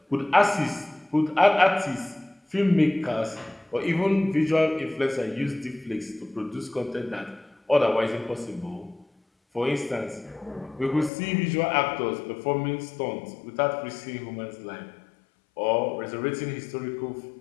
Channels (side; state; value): right; drops out; at 11.1 s